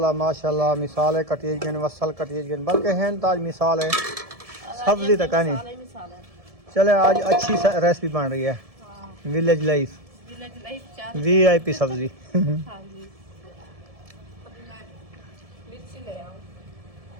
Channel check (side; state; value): left; late; 1.7 ms